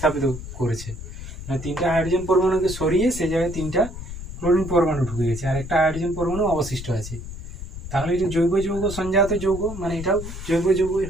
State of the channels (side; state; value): left; noise; rumble, 10 dB below the sound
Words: করেছে, মানে 3টা হাইড্রোজেন পরমাণুকে সরিয়ে সে জায়গায় 3টা ক্লোরিন পরমাণু ঢুকে গেছে, আর একটা হাইড্রোজেন পরমাণু অবশিষ্ট আছে। তাহলে এটা জৈব যৌগ সঞ্জাত যৌগ, মানে এটাও জৈব যৌগই